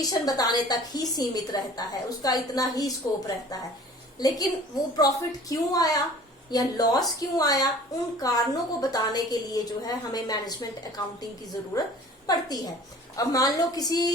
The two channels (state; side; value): normal; both; correlation 0.46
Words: बताने तक ही सीमित रहता है, उसका इतना ही स्कोप रहता है। लेकिन वो प्रॉफिट क्यों आया या लॉस क्यों आया, उन कारणों को बताने के लिए जो है हमें मैनेजमेंट अकाउंटिंग की जरूरत पड़ती है। अब मान लो